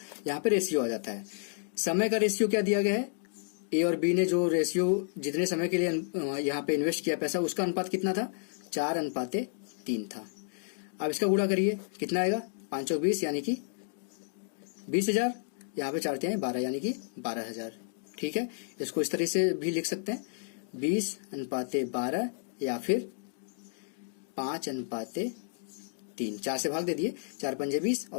यहाँ पे रेशियो आ जाता है। समय का रेशियो क्या दिया गया है, ए और बी ने जो रेशियो जितने समय के लिए यहाँ पे इन्वेस्ट किया पैसा उसका अनुपात कितना था, 4:3 था। अब इसका गुणा करिए कितना आएगा, 5 और 20 यानी कि 20,000, यहाँ पे 4×3 12 यानी कि 12,000। ठीक है, इसको इस तरह से भी लिख सकते हैं 20:12 या फिर 5:3। 4 से भाग दे दिए, 4 पंजे 20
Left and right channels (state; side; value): silent; right; digital silence